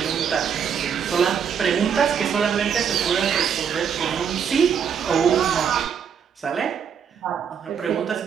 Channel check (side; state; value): left; quieter; 7.4 dB